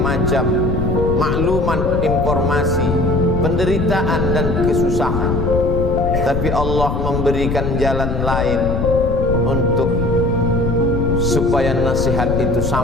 maklumat, informasi, penderitaan dan kesusahan. Tapi Allah memberikan jalan lain untuk supaya nasihat itu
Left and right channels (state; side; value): noise; left; rumble, 2 dB below the sound